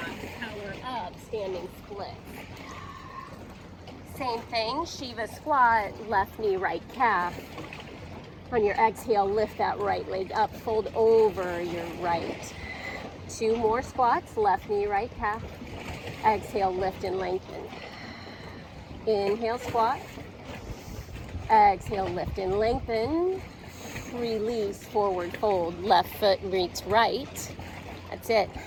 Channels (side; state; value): both; identical; correlation 1.00